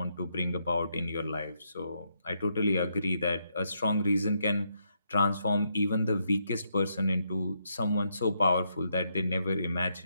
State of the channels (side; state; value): both; inverted; correlation -0.78